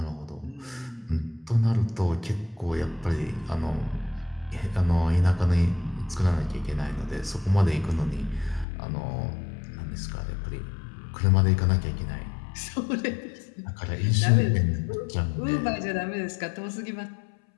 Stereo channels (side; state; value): right; drops out; at 8.7 s